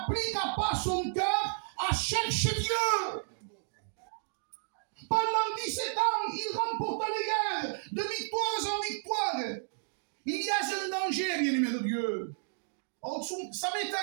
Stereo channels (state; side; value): silent; left; digital silence